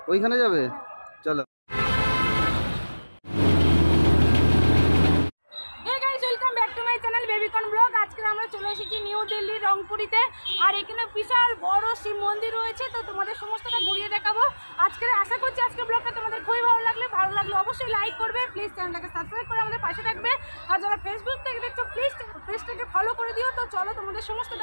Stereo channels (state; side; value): inverted; both; correlation -1.00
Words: ওইখানে যাবে, চলো। আজকে আমরা চলে এসেছি নিউ দিল্লি রংপুরিতে, আর এখানে বিশাল বড় শিব মন্দির রয়েছে, তো তোমাদের সমস্তটা ঘুরিয়ে দেখাবো আজকে। আশা করছি আজকে ব্লগটা তোমাদের খুবই ভালো লাগলে অবশ্যই লাইক করবে, প্লিজ চ্যানেলটাকে সাবস্ক্রাইব করে আমাদের পাশে থাকবে, আর যারা ফেসবুক থেকে দেখছো প্লিজ পেজটাকে ফলো করে দিও। তো চলো তোমাদের